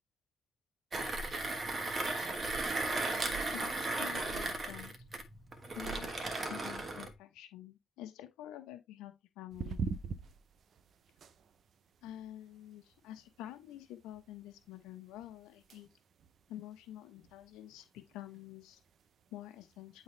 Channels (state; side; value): normal; both; correlation 0.75